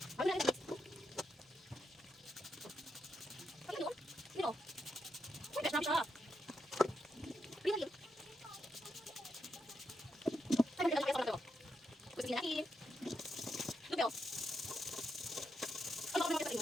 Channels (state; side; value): normal; both; correlation 0.83